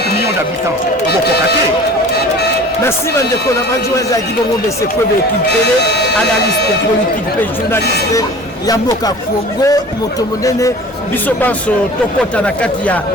millions d'habitants. Merci Mandeko, la adjoint Zaki Bongo de Sekwebe Kimpele, analyste politique, journaliste, Yamboka Congo, Motomonene, Bisobanso, Tokota Nakati ya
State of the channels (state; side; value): normal; both; correlation 0.43